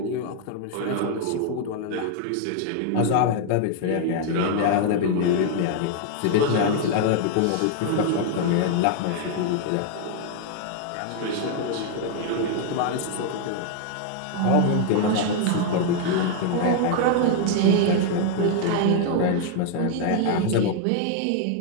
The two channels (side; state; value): both; different; correlation 0.00